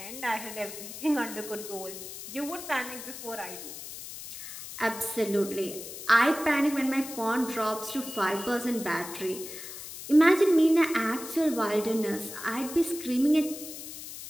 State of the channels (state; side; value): noise; left; hiss, 11 dB below the sound